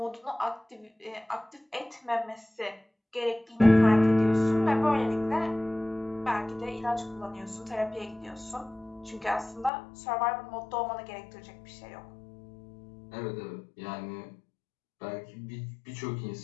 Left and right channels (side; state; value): right; drops out; at 9.7 s